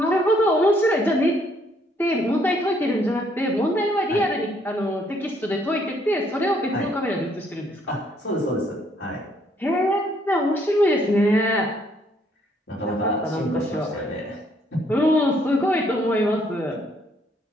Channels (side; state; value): both; normal; correlation 0.68